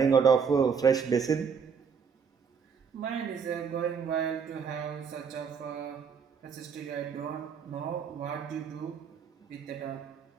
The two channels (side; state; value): left; quieter; 6.3 dB